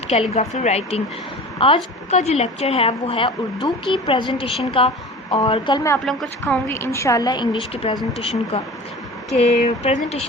कैलीग्राफी राइटिंग। आज का जो लेक्चर है वो है उर्दू की प्रेजेंटेशन का, और कल मैं आप लोगों को सिखाऊंगी इंशाल्लाह इंग्लिश की प्रेजेंटेशन का, कि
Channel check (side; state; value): both; normal; correlation 0.37